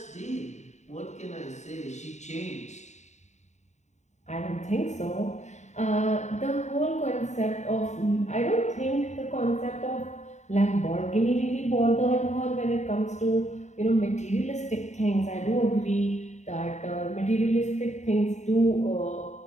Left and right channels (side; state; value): right; late; 0.34 ms